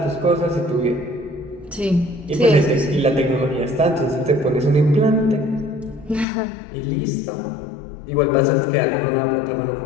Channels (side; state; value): right; drops out; at 6.2 s